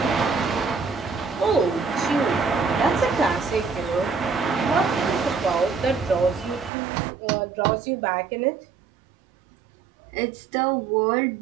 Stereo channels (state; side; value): drops out; left; at 6.7 s